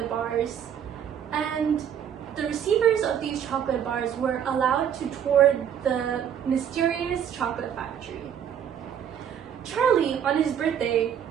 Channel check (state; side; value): quieter; left; 8.9 dB